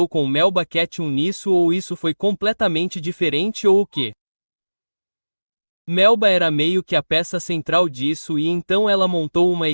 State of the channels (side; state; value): both; inverted; correlation -1.00